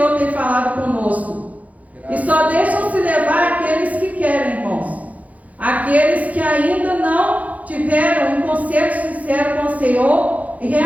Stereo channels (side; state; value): left; late; 0.072 ms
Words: tem falado conosco. E só deixam se levar aqueles que querem, irmãos. Aqueles que ainda não tiveram um conceito sincero com o Senhor e